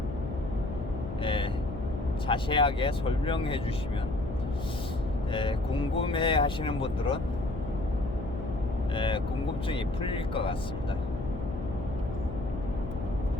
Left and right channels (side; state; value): left; noise; hum, 7 dB below the sound